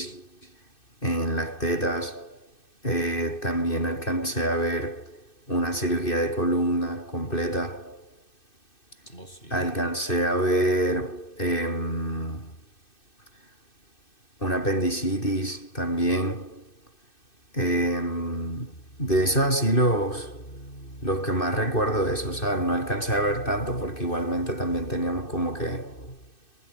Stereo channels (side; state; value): right; late; 2.6 ms